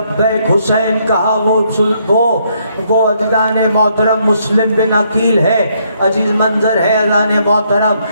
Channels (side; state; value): both; inverted; correlation -0.71